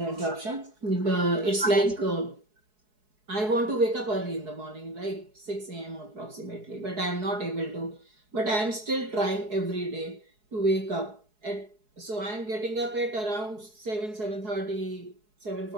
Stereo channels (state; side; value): late; left; 4.7 ms